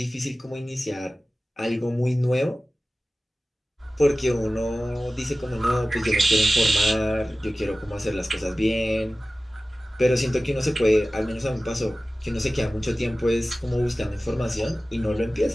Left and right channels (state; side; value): normal; both; correlation 0.96